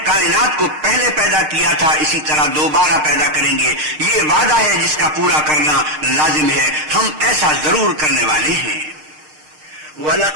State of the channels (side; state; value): left; late; 6.5 ms